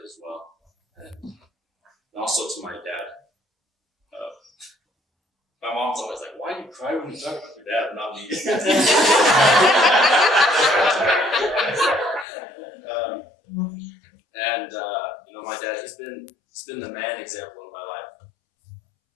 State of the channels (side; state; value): right; drops out; at 12.2 s